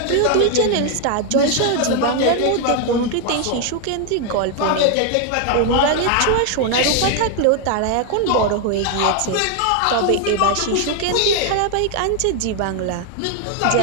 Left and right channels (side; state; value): both; different; correlation 0.01